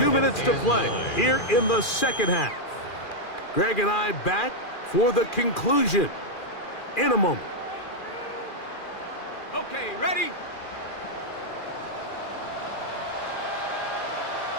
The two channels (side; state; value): right; late; 2.4 ms